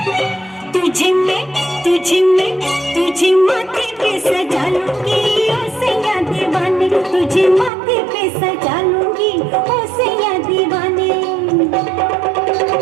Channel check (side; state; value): left; drops out; at 7.7 s